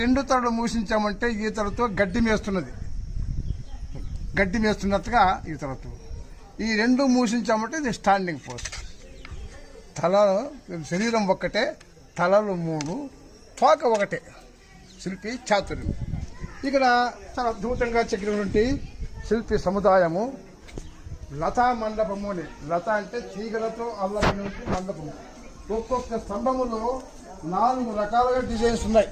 రెండు తలలు మూసించామంటే ఈ తలతో గడ్డి మేస్తున్నట్టుగా ఈ తలతో. ఈ రెండు మూసించామంటే ఇది స్టాండింగ్ పోస్ట్. శరీరం ఒక్కటే, తలలు మూడు, తోక ఒకటే. శిల్పి చాతుర్యం. ఇక్కడ చాలా అద్భుతంగా చెక్కినటువంటి శిల్పి సముదాయము. లతా మండపము అని. లత అంటే తీగలతో అల్లమైనటువంటి మండపము. ఒక్కొక్క స్తంభములో 4 రకాలుగా డిజైన్స్ ఉన్నాయి.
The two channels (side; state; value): both; identical; correlation 1.00